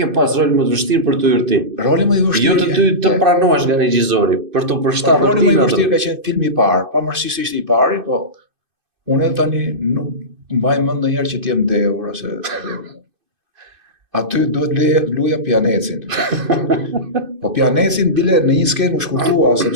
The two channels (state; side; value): late; left; 2.5 ms